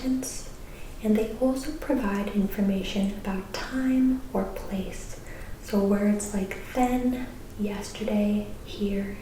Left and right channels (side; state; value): both; identical; correlation 1.00